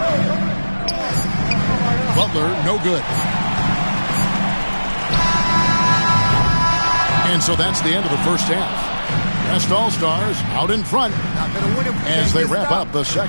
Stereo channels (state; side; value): inverted; both; correlation -1.00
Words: Butler, no good. And so that's the end of the first half. West All-Stars out in front as they wrap up the